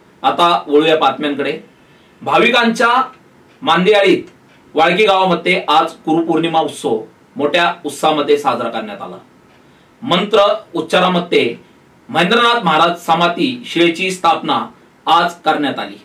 आता वळूया बातम्यांकडे। भाविकांच्या मांदियाळीत वाळकी गावामध्ये आज गुरुपौर्णिमा उत्सव मोठ्या उत्साहामध्ये साजरा करण्यात आला। मंत्र उच्चारामध्ये महेंद्रनाथ महाराज समाधी शिळेची स्थापना आज करण्यात आली।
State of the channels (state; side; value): identical; both; correlation 1.00